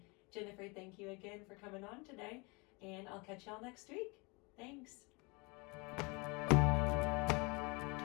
Jennifer, thank you again for coming on today, and I'll catch y'all next week. Thanks.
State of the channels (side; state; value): right; quieter; 28.7 dB